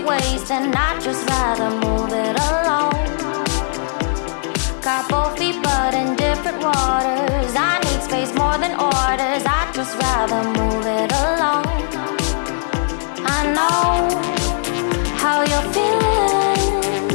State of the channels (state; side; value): silent; right; digital silence